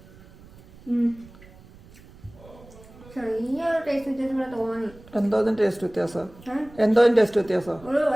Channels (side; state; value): right; noise; rumble, 22 dB below the sound